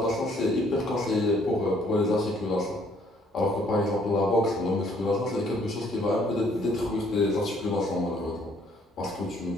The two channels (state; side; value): normal; both; correlation 0.64